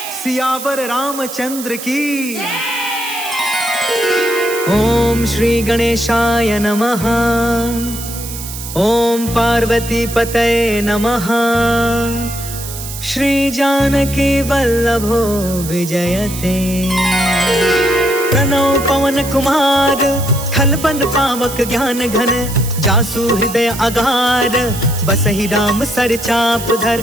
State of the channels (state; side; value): noise; right; hiss, 10 dB below the sound